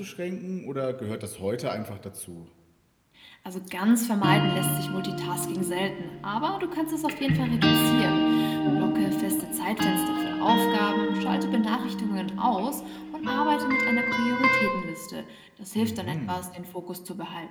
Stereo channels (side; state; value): both; identical; correlation 1.00